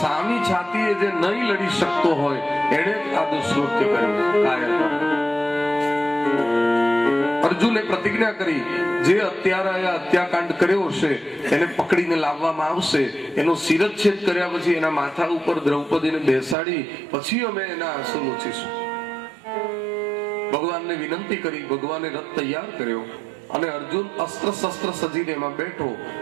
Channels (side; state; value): left; drops out; at 16.6 s